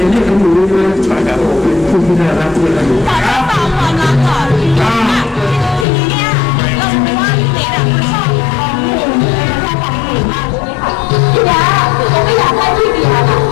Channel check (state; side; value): drops out; right; at 5.9 s